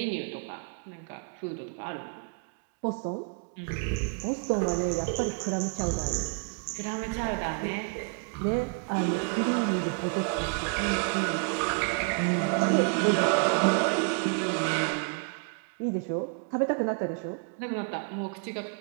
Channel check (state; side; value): quieter; left; 38.3 dB